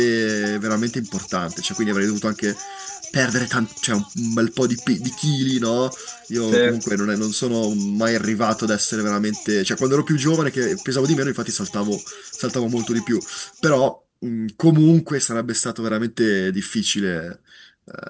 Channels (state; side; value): identical; both; correlation 1.00